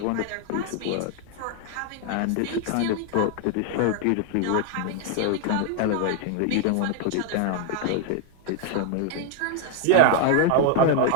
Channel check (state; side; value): different; both; correlation 0.00